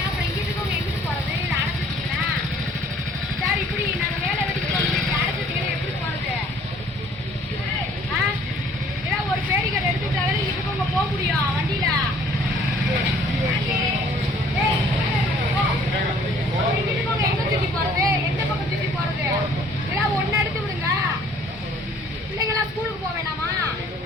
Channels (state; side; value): normal; both; correlation 0.57